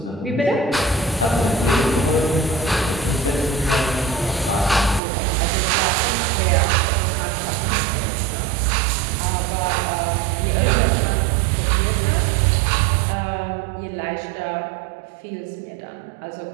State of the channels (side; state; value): left; drops out; at 5.0 s